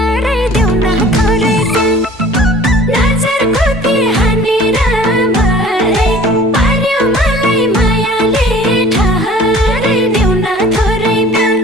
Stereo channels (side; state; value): both; normal; correlation 0.47